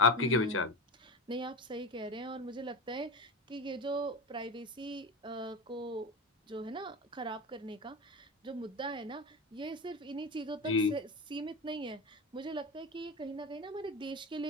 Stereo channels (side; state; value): both; normal; correlation 0.23